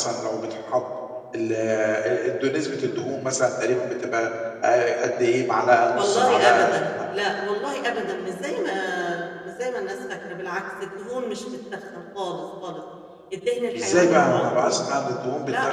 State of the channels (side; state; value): both; identical; correlation 1.00